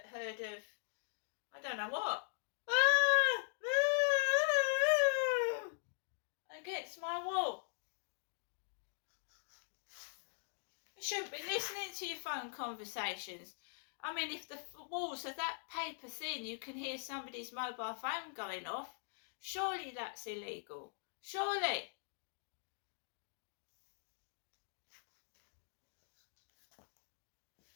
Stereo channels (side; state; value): right; silent; digital silence